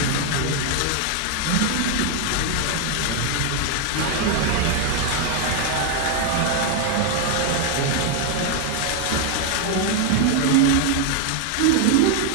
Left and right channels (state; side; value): different; both; correlation 0.01